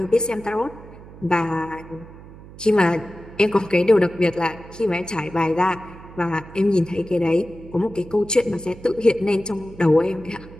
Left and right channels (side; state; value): right; noise; hum, 18 dB below the sound